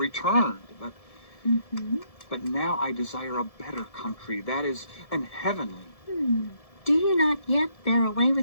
But now I desire a better country, that is, an heavenly. Do you not yet bear away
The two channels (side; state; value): right; late; 1.7 ms